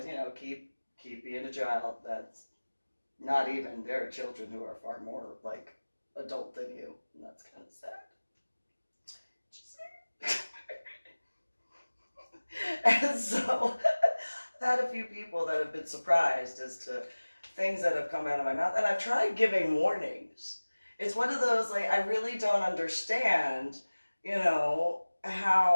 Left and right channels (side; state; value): both; inverted; correlation -1.00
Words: you know, keep being a child. That's not even, there are children who are far more, like, adult than you. And that's kind of sad. And so I've had a few people that have been surprised as to things that have come out of my mouth. And I've tried giving warnings. It's one of those, like, I really don't understand, you know,